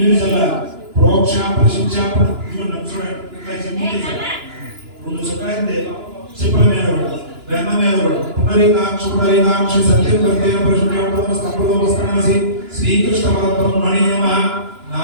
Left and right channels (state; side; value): late; left; 2.9 ms